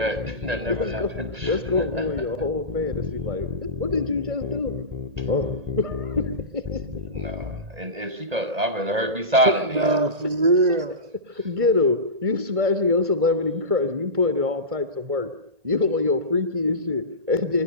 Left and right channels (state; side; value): late; left; 1.8 ms